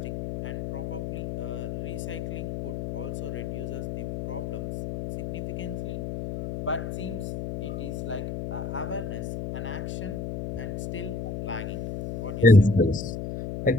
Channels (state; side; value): noise; left; hum, 5 dB below the sound